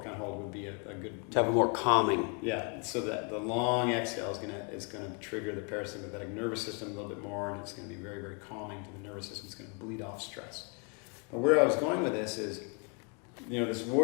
hold would be a good. To have a more calming. Yeah. So that the long exhale is gonna trigger the parasympathetic nervous system a little bit more, and it's gonna be very, very calming to the nervous system. It's gonna bleed off stress. But where I was going with this is, this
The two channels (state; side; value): quieter; right; 34.8 dB